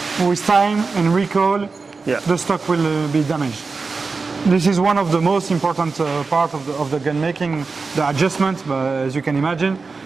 with time and recall, Yeah. the stock will be damaged. This is one of the most important part of the gun making, the adjustment, as you can imagine.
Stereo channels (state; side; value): quieter; left; 4.4 dB